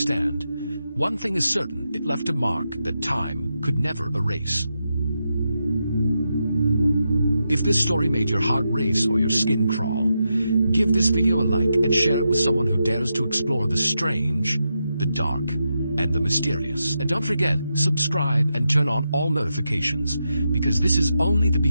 one thing is certain, it left a mark that time could never erase. If this story made your heart race or your skin crawl, give this video a like and share it with someone who dares to explore the strange, the dark, and the mysterious. And don't forget, subscribe and turn on all notifications, because this is only the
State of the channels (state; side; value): inverted; both; correlation -0.86